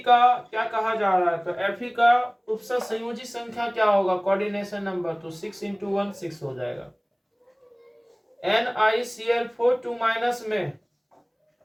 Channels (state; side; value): identical; both; correlation 1.00